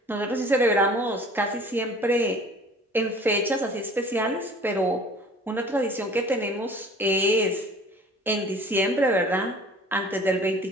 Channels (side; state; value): both; normal; correlation 0.47